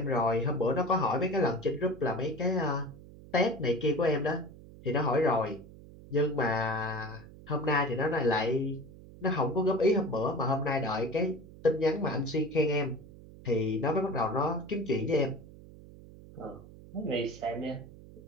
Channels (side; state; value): right; noise; hum, 19 dB below the sound